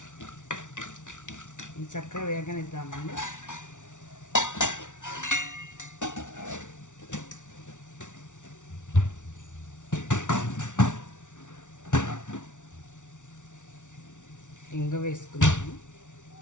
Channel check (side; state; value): right; late; 0.86 ms